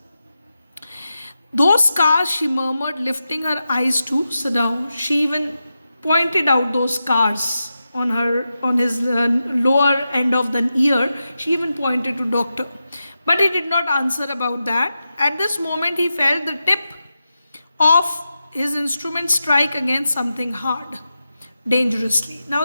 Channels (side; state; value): both; inverted; correlation -0.90